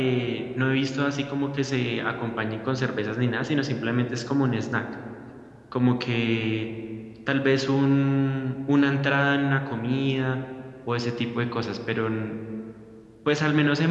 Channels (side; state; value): both; identical; correlation 1.00